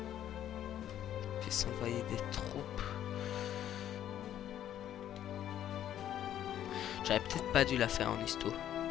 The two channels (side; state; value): right; quieter; 11.1 dB